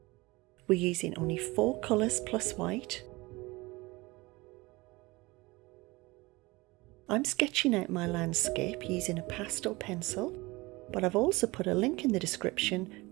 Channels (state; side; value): quieter; left; 22.7 dB